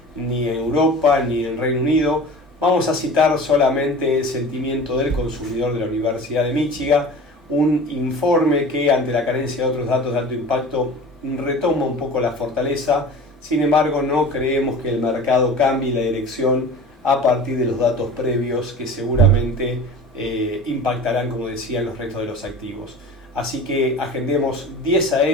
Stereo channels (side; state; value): both; normal; correlation 0.38